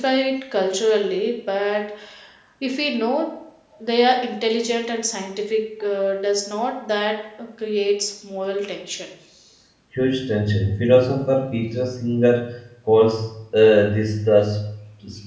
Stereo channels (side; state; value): both; identical; correlation 1.00